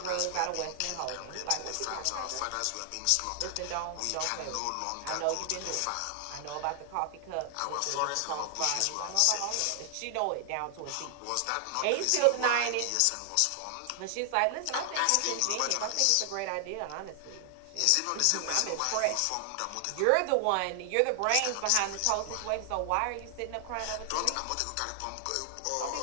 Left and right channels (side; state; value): both; different; correlation 0.00